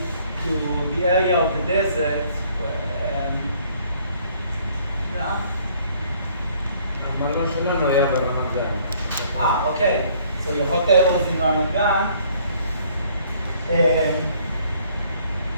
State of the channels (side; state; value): both; inverted; correlation -0.61